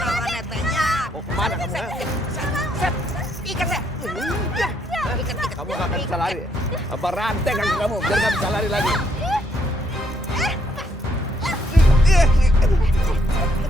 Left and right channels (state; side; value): normal; both; correlation 0.72